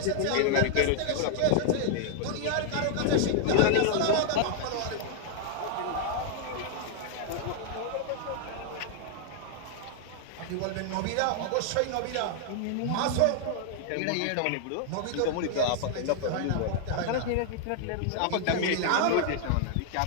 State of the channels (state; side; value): different; both; correlation 0.00